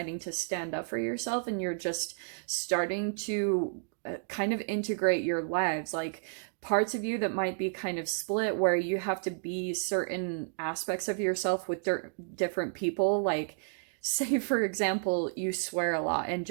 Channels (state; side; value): silent; left; digital silence